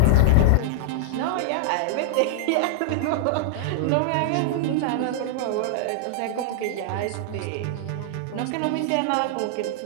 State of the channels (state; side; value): different; both; correlation -0.01